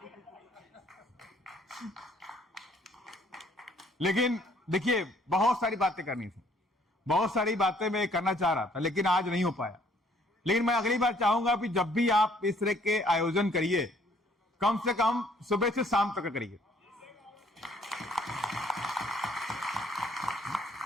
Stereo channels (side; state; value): both; normal; correlation 0.62